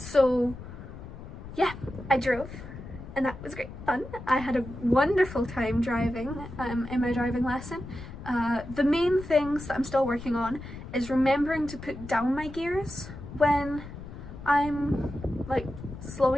yeah, I drove, and that was great fun. I had a wonderful time driving in my driving lesson. The main things that I'm still working on is remembering to put down my gears when I'm like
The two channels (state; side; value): noise; left; rumble, 12 dB below the sound